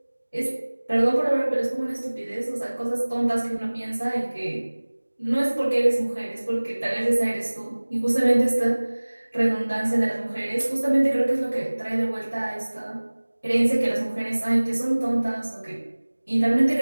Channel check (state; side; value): inverted; both; correlation -1.00